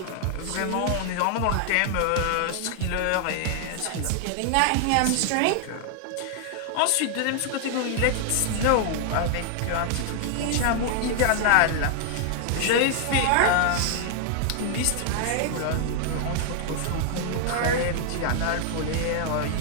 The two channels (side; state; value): both; different; correlation 0.00